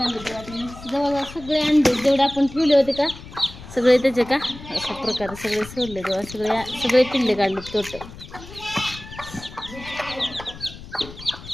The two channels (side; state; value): left; noise; rumble, 15 dB below the sound